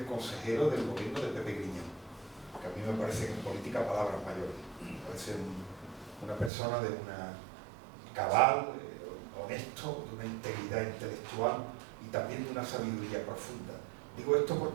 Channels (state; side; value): drops out; left; at 6.5 s